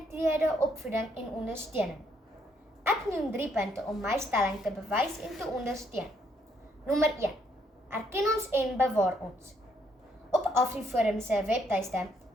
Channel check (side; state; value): both; normal; correlation 0.71